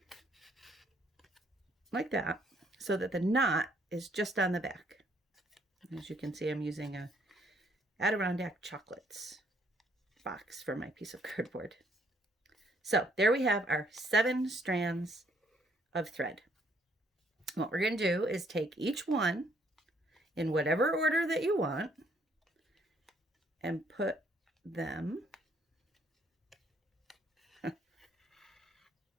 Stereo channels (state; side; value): normal; both; correlation 0.67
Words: Like that, so that the knot is just on the back. As you can see, I'm using a Adirondack Chocolates box for my piece of cardboard. So there we have our 7 strands of thread. What we're going to do is take each one in whatever order that you want and put them